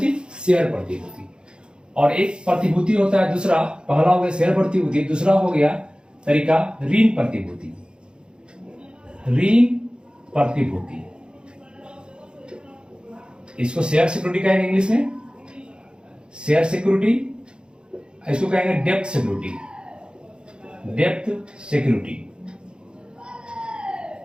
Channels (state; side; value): late; left; 0.051 ms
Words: शेयर प्रतिभूति। और एक प्रतिभूति होता है दूसरा, पहला हो गया शेयर प्रतिभूति, दूसरा हो गया तरीका ऋण प्रतिभूति। ऋण प्रतिभूति, इसको शेयर सिक्योरिटी कहेंगे इंग्लिश में, शेयर सिक्योरिटी। इसको कहेंगे depth security, depth security,